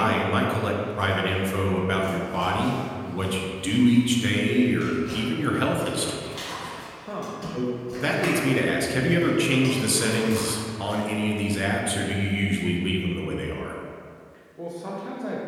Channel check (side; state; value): both; identical; correlation 1.00